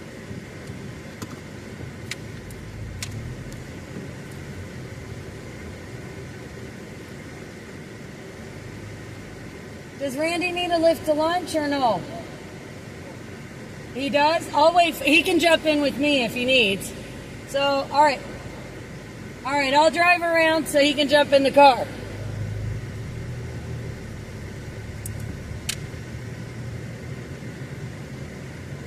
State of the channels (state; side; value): identical; both; correlation 1.00